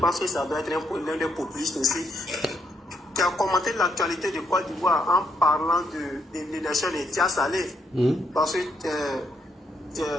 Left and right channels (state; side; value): normal; both; correlation 0.75